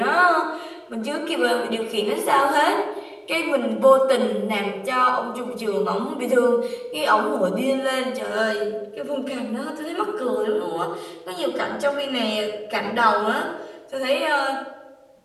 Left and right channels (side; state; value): both; identical; correlation 1.00